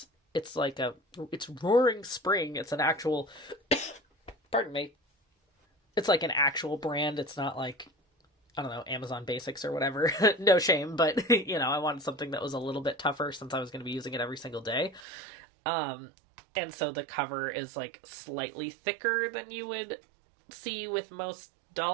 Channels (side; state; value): left; drops out; at 15.0 s